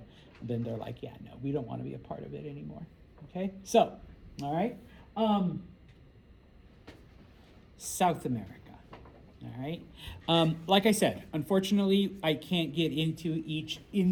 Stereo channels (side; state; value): both; identical; correlation 1.00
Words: then they're like, yeah, no, we don't want to be a part of it anymore. Okay, so, all right. South America. All right. Like I said, unfortunately, I can't get into each